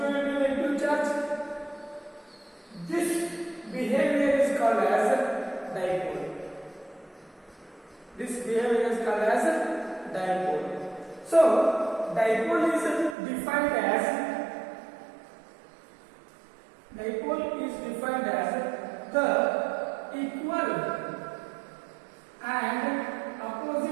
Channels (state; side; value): drops out; left; at 13.2 s